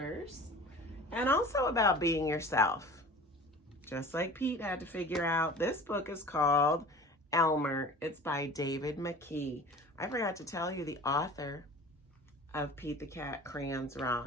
and also about being yourself. Just like Pete had to figure out, this book is called Elmer. It's by David McKee. I forgot to tell you the author of Pete the Cat Crayons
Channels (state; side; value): normal; both; correlation 0.40